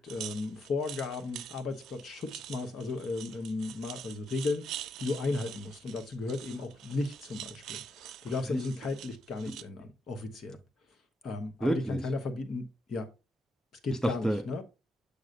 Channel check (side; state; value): both; normal; correlation 0.81